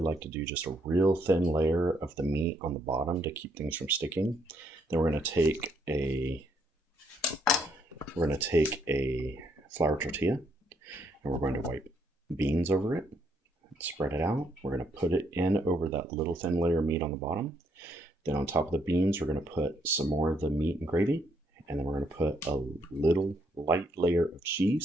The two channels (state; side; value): normal; both; correlation 0.72